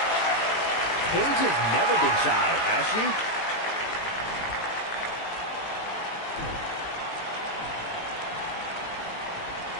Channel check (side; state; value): right; late; 18 ms